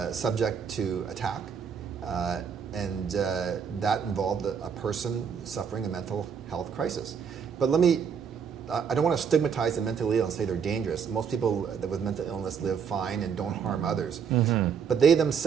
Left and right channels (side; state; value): left; quieter; 6.9 dB